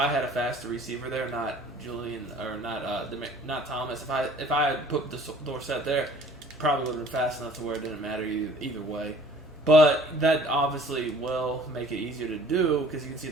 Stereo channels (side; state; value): both; normal; correlation 0.51